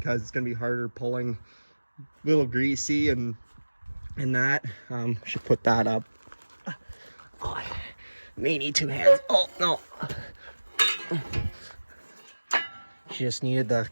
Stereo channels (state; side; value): inverted; both; correlation -1.00